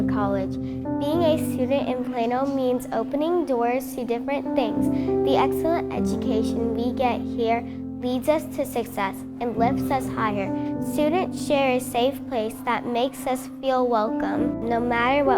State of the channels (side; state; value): both; identical; correlation 1.00